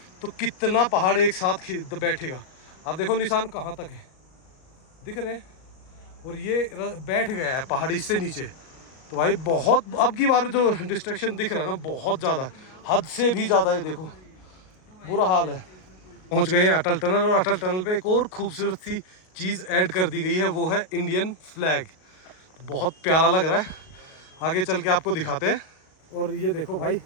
तो कितना पहाड़ एक साथ बैठेगा। आप देखो निशान कहाँ तक है, दिख रहे हैं, और ये बैठ गया है पहाड़ी से नीचे। तो भाई बहुत, अब की बार जो डिस्ट्रैक्शन दिख रहा है ना बहुत ज़्यादा, हद से भी ज़्यादा। ये देखो बुरा हाल है। पहुंच गए हैं अटल टनल, और अटल टनल पे एक और खूबसूरत सी चीज़ ऐड कर दी गई है, वो है इंडियन फ्लैग। बहुत प्यारा लग रहा है, आगे चल के आपको दिखाते हैं। और ये देखो भाई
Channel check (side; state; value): right; late; 38 ms